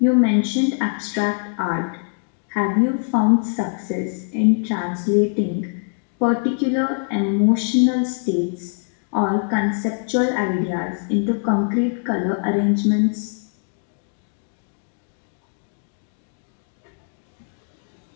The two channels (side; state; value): right; silent; 58 dB below the other